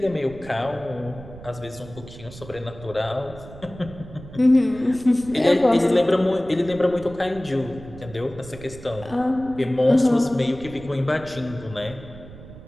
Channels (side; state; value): right; noise; rumble, 16 dB below the sound